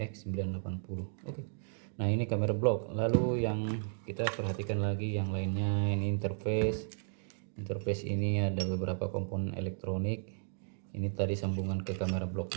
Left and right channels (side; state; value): left; silent; digital silence